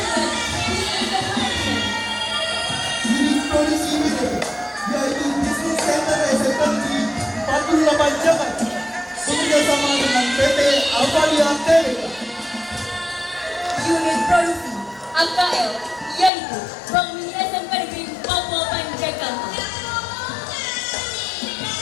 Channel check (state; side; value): drops out; right; at 16.3 s